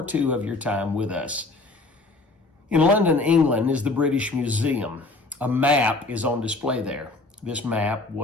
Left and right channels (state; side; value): quieter; right; 3.2 dB